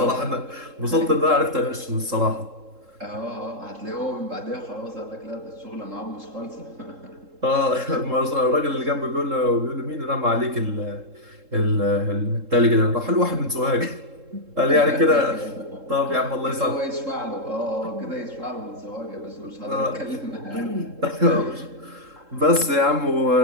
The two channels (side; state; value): left; late; 3.7 ms